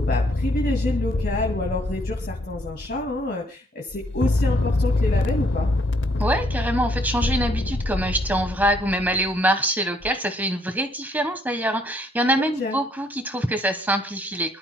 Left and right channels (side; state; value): both; normal; correlation 0.68